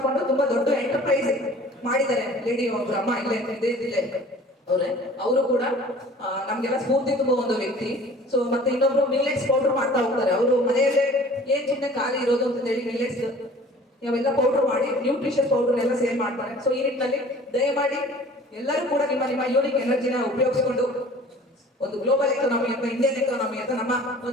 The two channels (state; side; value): normal; both; correlation 0.47